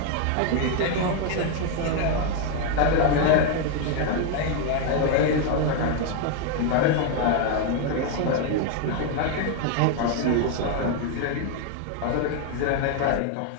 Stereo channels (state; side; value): different; both; correlation 0.01